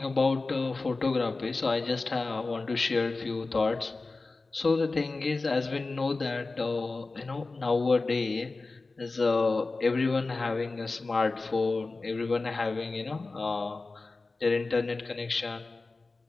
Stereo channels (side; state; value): right; quieter; 3.6 dB